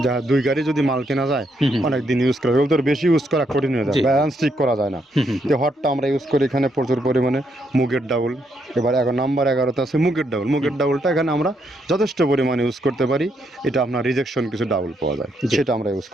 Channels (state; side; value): normal; both; correlation 0.76